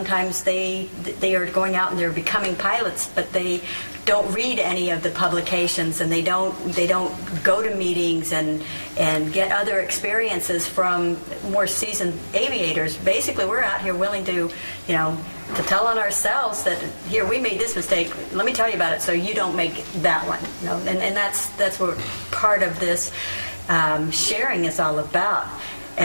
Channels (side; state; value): both; inverted; correlation -1.00